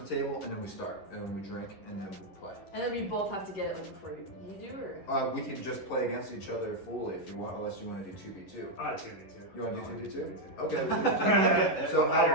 table, and then we start, and we drink, and then we play. And then we both have to get it like before you do, or? We can just play against each other fully if you want, unless you want to do 2v2. 2v2. You want to do 2v2? Okay. We can do 2v2. So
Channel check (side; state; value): right; late; 11 ms